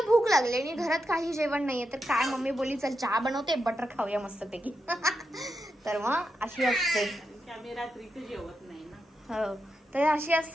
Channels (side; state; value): both; normal; correlation 0.86